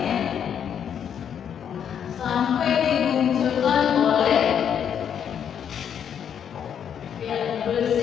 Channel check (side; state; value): right; quieter; 8.5 dB